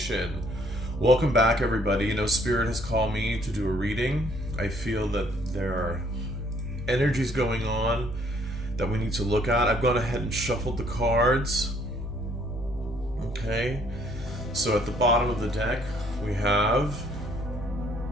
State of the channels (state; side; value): normal; both; correlation 0.63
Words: Welcome back, everybody. Spirit has called me to do a reading. I feel that there are energies going on that we need to look at. I've gone ahead and shuffled the cards. Okay. So at the bottom of the deck, we have